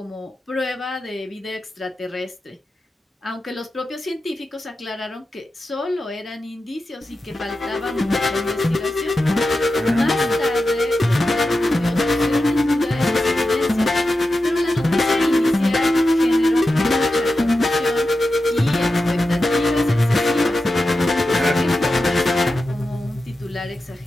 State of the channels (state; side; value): normal; both; correlation 0.91